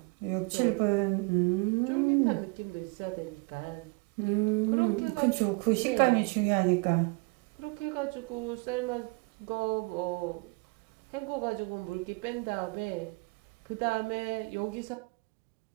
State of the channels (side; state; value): left; quieter; 30.4 dB